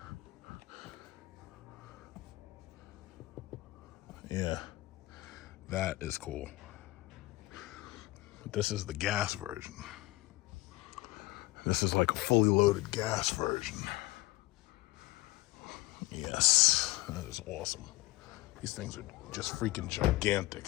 Yeah, that is cool. But this is the gas version. This is like a fully loaded gas version. Yes, that is awesome. These things are just freaking gigantic.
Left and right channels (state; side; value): quieter; right; 19.9 dB